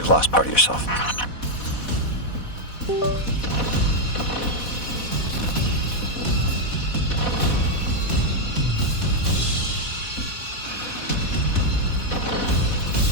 lost part of yourself.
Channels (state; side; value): late; right; 4.1 ms